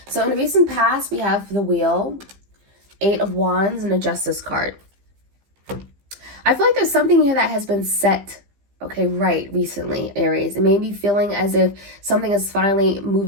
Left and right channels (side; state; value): left; late; 15 ms